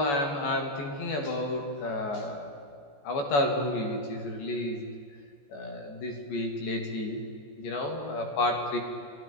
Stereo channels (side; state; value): right; late; 14 ms